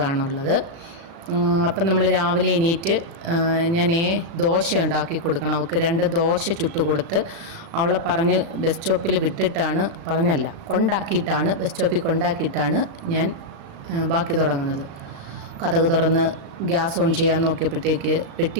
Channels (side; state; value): left; late; 36 ms